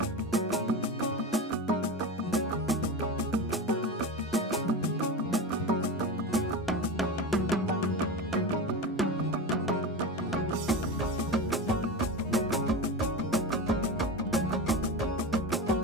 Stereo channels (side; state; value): both; normal; correlation 0.24